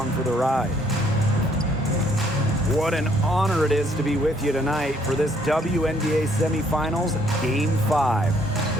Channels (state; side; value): normal; both; correlation 0.66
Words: for the ride. What an honor it is to be with you tonight for this WNBA Semifinals Game 5.